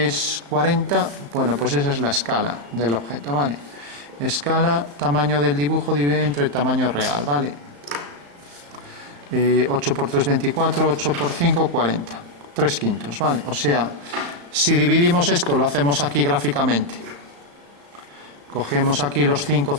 es 40. Bueno, pues esa es la escala del objeto, ¿vale? Escala, tamaño del dibujo dividido entre el tamaño real, ¿vale? 8 por 3, 24, 8 por 5, 40. 3/5, ¿vale? O sea, si dividimos esto, lo hacemos aquí gráficamente. Cogemos aquí los 5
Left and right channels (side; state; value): left; late; 35 ms